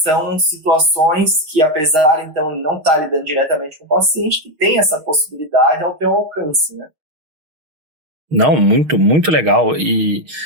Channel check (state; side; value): late; left; 6.4 ms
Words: situações que, apesar, então, de não estar lidando diretamente com o paciente, que tem essa possibilidade ao teu alcance, né? Não, muito, muito legal. E